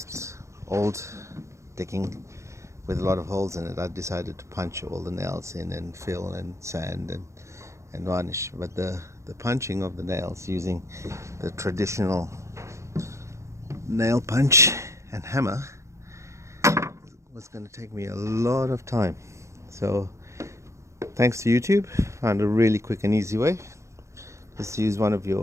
old decking with a lot of holes in it, I decided to punch all the nails in and fill and sand and varnish. But the punching of the nails using the traditional nail punch and hammer was going to take me a lot of time. So thanks to YouTube, found a really quick and easy way. Just use one of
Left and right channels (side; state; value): left; late; 0.14 ms